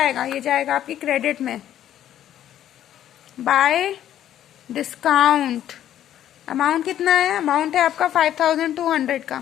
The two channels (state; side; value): quieter; right; 11.4 dB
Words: ये जाएगा आपकी क्रेडिट में। बाय डिस्काउंट अमाउंट कितना है, अमाउंट है आपका 5200